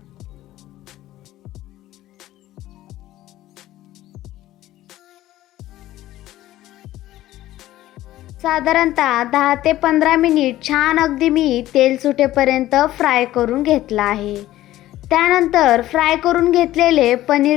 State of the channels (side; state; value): right; quieter; 14.9 dB